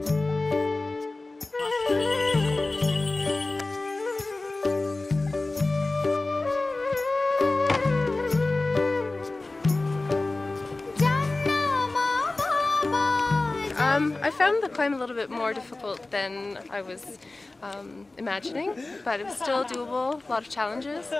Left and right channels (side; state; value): right; quieter; 3.1 dB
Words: I found the climb a little bit more difficult than I was imagining, but it was still doable, a lot of challenges,